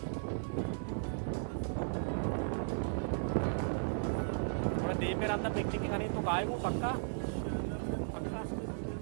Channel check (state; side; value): silent; left; digital silence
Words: दे मेरा अंदर पिकनिक करनी तो काय वो पक्का पक्का